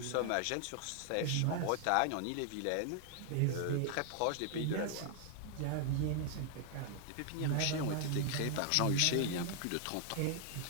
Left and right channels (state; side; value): different; both; correlation 0.00